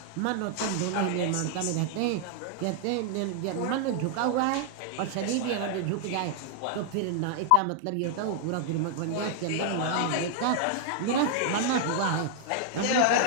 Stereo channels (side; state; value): both; different; correlation 0.00